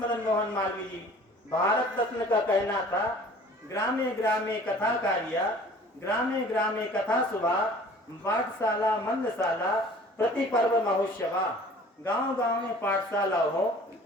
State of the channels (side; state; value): both; normal; correlation 0.48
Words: मोहन मालवीय जी भारत रत्न का कहना था, ग्रामे ग्रामे कथा कार्या, ग्रामे ग्रामे कथा सुभा, पाठशाला मंदशाला प्रति पर्व महोत्सवा। गांव गांव में पाठशाला हो,